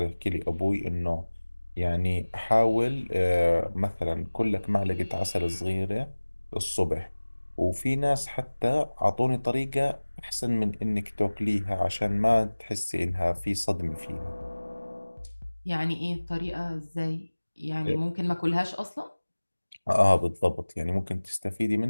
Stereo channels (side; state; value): both; inverted; correlation -1.00